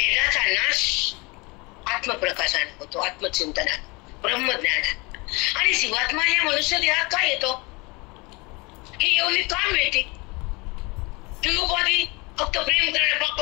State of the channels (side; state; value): right; quieter; 26.5 dB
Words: नाश आत्मप्रकाशाने होतो, आत्मचिंतनात, ब्रह्मज्ञानात. आणि जीवात्मा या मनुष्य देहात काय येतो, ही एवढी का मिळते, की उपाधी फक्त प्रेम करायला,